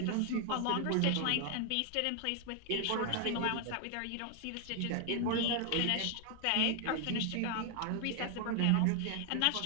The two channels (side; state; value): both; different; correlation 0.00